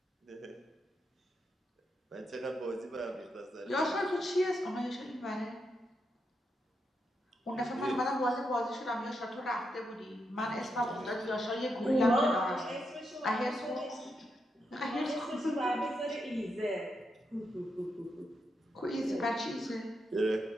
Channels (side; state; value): both; normal; correlation 0.83